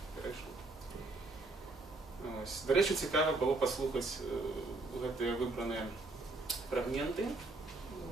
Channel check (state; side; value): quieter; left; 3.1 dB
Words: перейшло. До речі, цікаво було послухати ці вибрані фрагменти.